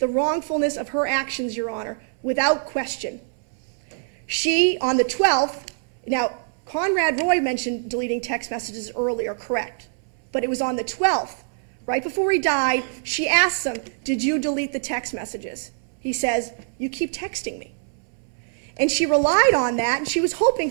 wrongfulness of her actions, Your Honor, without question. She, on the 12th, now, Conrad Roy mentioned deleting text messages earlier, correct. But it was on the 12th, right before he died, she asked him, did you delete the text messages? He says, you keep texting me. And she relied on that, and she was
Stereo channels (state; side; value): silent; left; 62 dB below the other